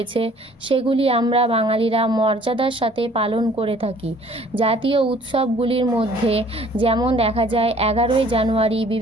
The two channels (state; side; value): normal; both; correlation 0.55